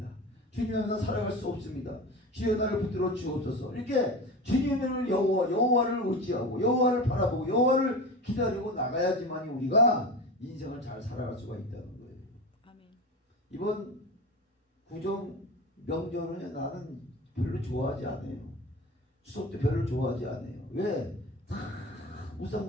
주님만 나 살아갈 수 없습니다. 주여 나를 붙들어 주옵소서. 이렇게 주님을 여호와를 의지하고 여호와를 바라보고 여호와를 기다리고 나가야지만 우리가 인생을 잘 살아갈 수가 있다는 거예요. 아멘. 이번 구정 명절은 나는 별로 좋아하지 않아요. 추석도 별로 좋아하지 않아요. 왜? 다 우상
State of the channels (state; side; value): normal; both; correlation 0.29